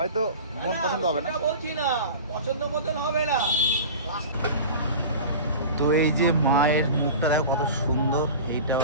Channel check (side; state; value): both; inverted; correlation -0.34